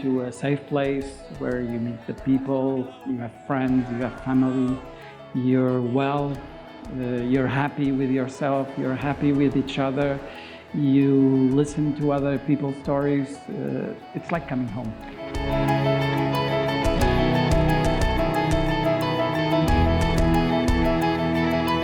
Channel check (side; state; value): both; identical; correlation 1.00